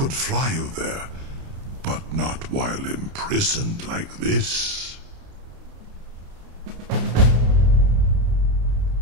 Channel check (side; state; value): left; late; 30 ms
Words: fly you there, but not while imprisoned like this.